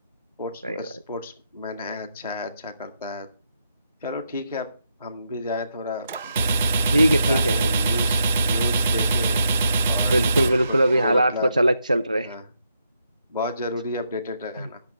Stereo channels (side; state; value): both; inverted; correlation -0.81